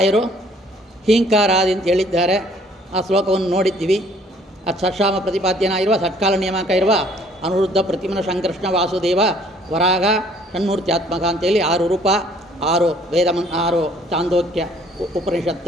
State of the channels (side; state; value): both; normal; correlation 0.59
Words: ಹೀಂಕಾರಾದಿ ಅಂತ ಹೇಳಿದ್ದಾರೆ. ಆ ಶ್ಲೋಕವನ್ನು ನೋಡಿದ್ದೀವಿ. ಅದು ಷಟ್ಸಾಮ ಪ್ರತಿಪಾದ್ಯನಾಗಿರುವ ಷಟ್ಕಾಲ ನಿಯಾಮಕ ಇರುವ ಅನುರುದ್ಧ ಪ್ರತಿಮನ ಸಂಕೃಷ್ಣ ವಾಸುದೇವ ವರಾಗ ಷಣ್ಮೂರ್ತ್ಯಾತ್ಮಕ ಅಂತೇಳಿ 6 ರೂಪ, 6 6 ಚಾಂದೋಕ್ಯ